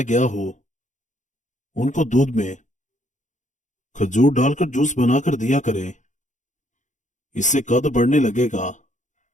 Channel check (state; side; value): late; right; 0.36 ms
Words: गया हो उनको दूध में खजूर डालकर जूस बनाकर दिया करें, इससे कद बढ़ने लगेगा।